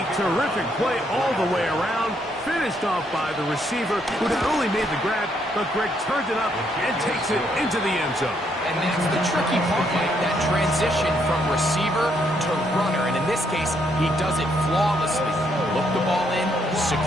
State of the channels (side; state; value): both; normal; correlation 0.73